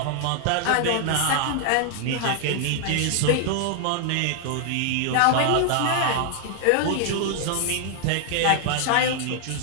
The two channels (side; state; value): both; different; correlation 0.00